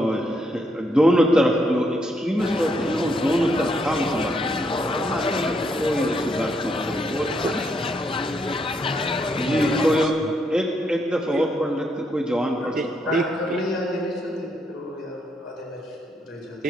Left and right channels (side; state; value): both; normal; correlation 0.76